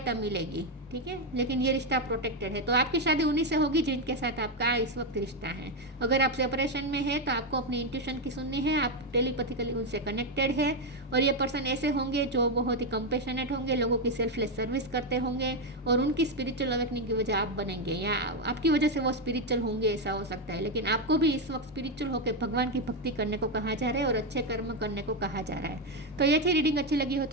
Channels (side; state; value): both; normal; correlation 0.06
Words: मिलेगी, ठीक है। लेकिन ये रिश्ता प्रोटेक्टेड है, तो आपकी शादी उन्हीं से होगी जिनके साथ आपका इस वक्त रिश्ता है। अगर आप सेपरेशन में है तो आपको अपनी इंट्यूशन की सुननी है, आप टेलीपैथिकली उनसे कनेक्टेड है। और ये पर्सन ऐसे होंगे जो बहुत ही कंपेशनेट होंगे, लोगों की सेल्फलेस सर्विस करते होंगे, और उनकी स्पिरिचुअल अवेकनिंग की वजह आप बनेंगे, या आपकी वजह से वो स्पिरिचुअल होंगे, ऐसा हो सकता है। लेकिन आपको भी इस वक्त स्पिरिचुअल होकर भगवान की भक्ति करने को कहा जा रहा है और अच्छे कर्म करने को कहा जा रहा है। तो ये थी रीडिंग, अच्छी लगी हो